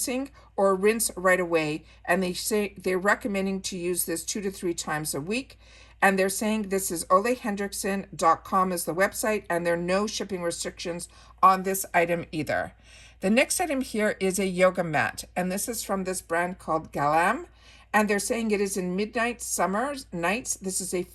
or rinse right away. And they say they're recommending to use this 2 to 3 times a week. And they're saying this is olayhendrickson.com is the website, and there are no shipping restrictions on this item either. The next item here is a yoga mat, and this is from this brand called Galam, and they're saying it is in midnight summer nights. This is a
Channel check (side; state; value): both; identical; correlation 1.00